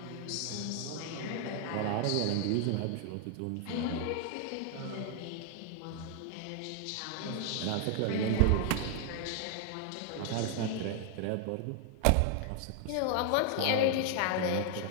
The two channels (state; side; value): different; both; correlation 0.00